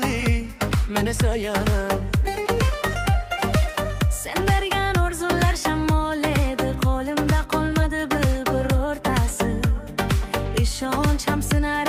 men esa yana. Sen bergan orzular shamol edi, qo'limda qolmadi birortasi. Ishonchim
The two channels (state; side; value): identical; both; correlation 1.00